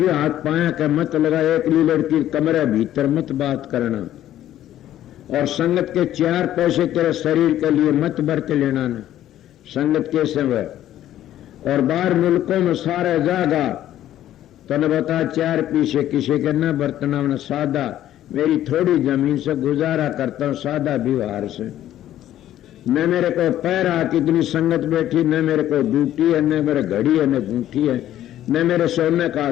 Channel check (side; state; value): right; quieter; 12.5 dB